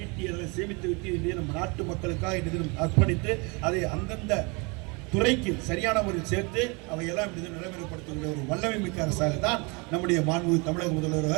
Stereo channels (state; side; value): quieter; left; 29.8 dB